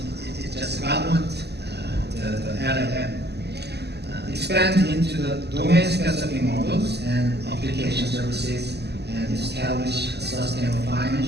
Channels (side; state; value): left; late; 0.49 ms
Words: It's just government, the LLM. Expand into the domain-specific models and application services, and establish a sustainable